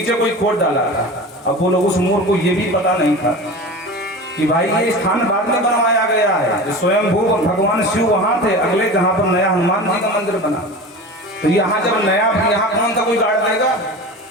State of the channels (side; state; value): both; normal; correlation 0.32